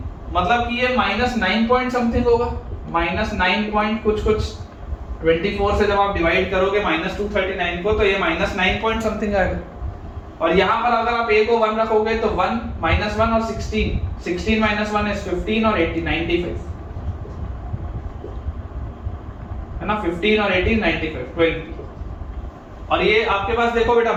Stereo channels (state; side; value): identical; both; correlation 1.00